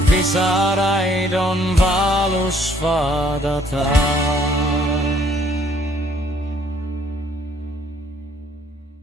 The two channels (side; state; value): both; normal; correlation 0.63